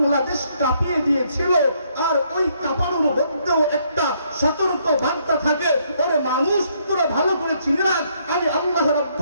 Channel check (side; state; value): both; inverted; correlation -0.71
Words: কাঁপিয়ে দিয়েছিল। আর ওই কাঁপানোর মধ্যেও একটা সতর্ক বার্তা থাকে, ওরে মানুষ তোরা ভালো করে চিনে রাখ, আমি আল্লাহ